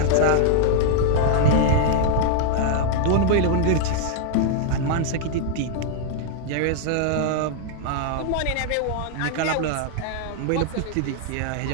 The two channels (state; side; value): different; both; correlation -0.01